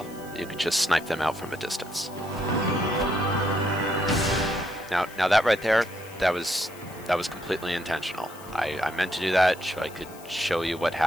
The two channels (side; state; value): left; noise; hiss, 20 dB below the sound